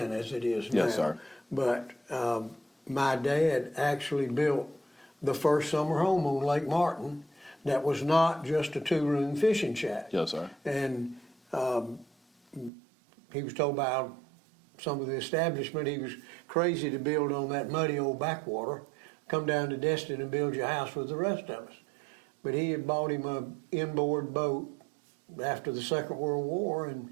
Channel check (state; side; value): drops out; left; at 12.7 s